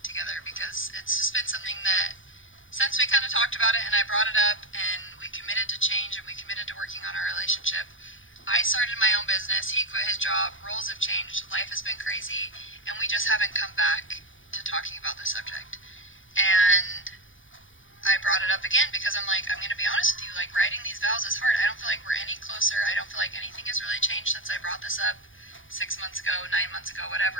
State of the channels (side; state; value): right; late; 0.57 ms